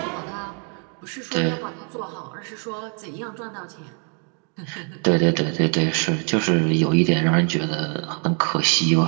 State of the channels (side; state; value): left; quieter; 39.2 dB